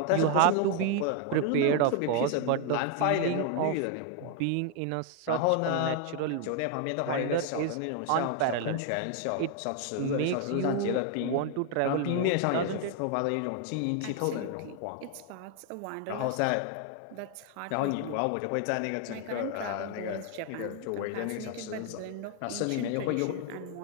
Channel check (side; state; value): both; different; correlation 0.00